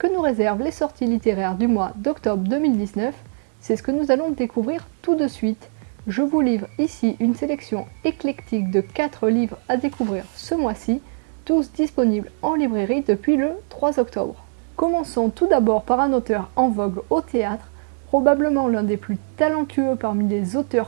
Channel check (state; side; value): silent; left; 64 dB below the other